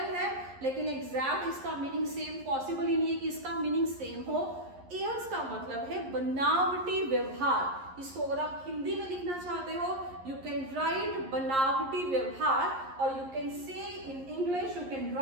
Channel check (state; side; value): late; left; 11 ms